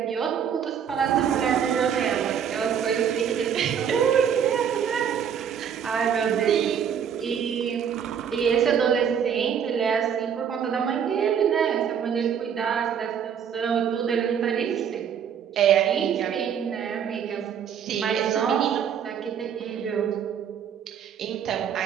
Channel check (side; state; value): left; quieter; 8.0 dB